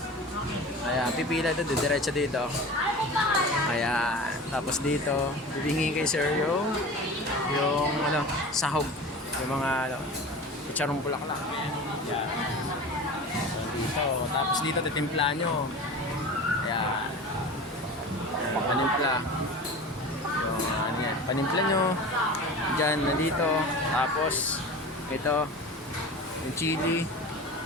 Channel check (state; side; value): normal; both; correlation 0.34